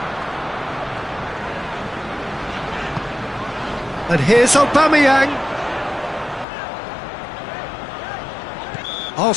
And here's Aubameyang.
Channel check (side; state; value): right; drops out; at 6.5 s